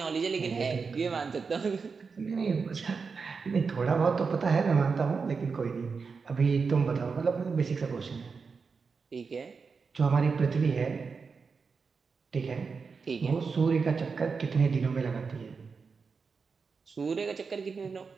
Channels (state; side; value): quieter; left; 5.1 dB